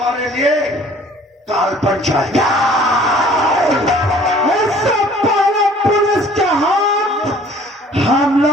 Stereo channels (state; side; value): normal; both; correlation 0.53